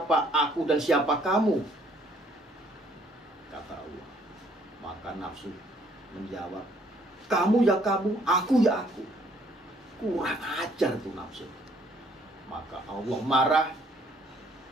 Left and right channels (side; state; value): both; normal; correlation 0.63